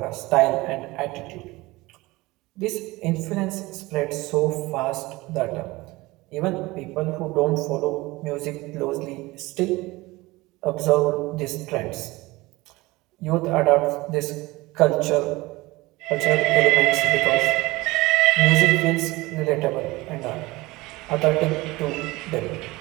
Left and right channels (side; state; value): left; quieter; 20.9 dB